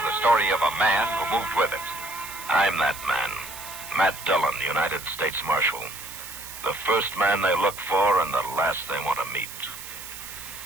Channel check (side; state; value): right; noise; hiss, 12 dB below the sound